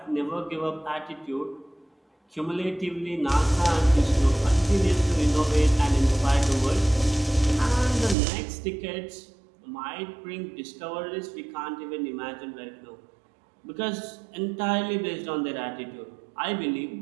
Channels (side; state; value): left; drops out; at 8.2 s